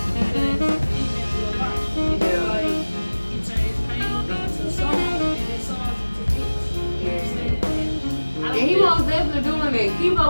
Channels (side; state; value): both; inverted; correlation -1.00